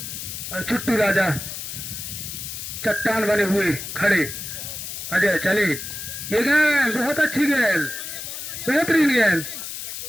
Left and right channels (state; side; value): noise; left; hiss, 7 dB below the sound